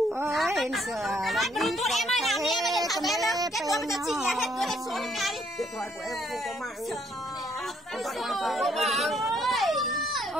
Điện thoại của em không có mạng.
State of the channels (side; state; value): both; normal; correlation 0.68